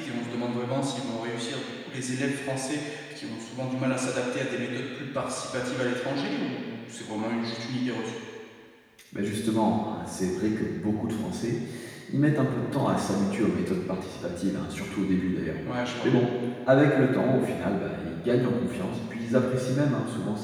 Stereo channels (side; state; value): both; identical; correlation 1.00